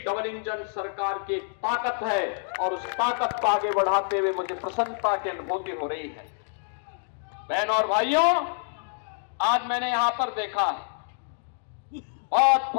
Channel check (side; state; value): right; silent; digital silence